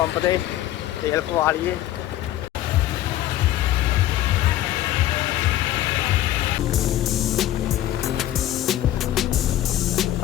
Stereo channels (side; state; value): right; quieter; 13.5 dB